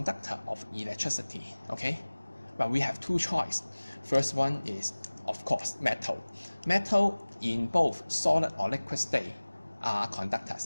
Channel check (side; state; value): both; inverted; correlation -1.00